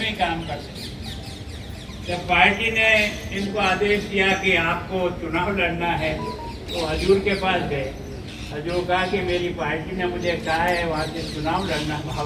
काम करते हैं। जब पार्टी ने इनको आदेश दिया कि आपको चुनाव लड़ना है तो हजूर के पास गए। हजूर कहा कि मेरी पार्टी ने मुझे कहा है वहाँ से चुनाव लड़ना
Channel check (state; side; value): identical; both; correlation 1.00